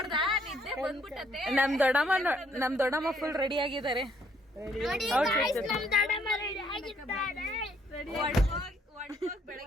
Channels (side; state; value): both; normal; correlation 0.67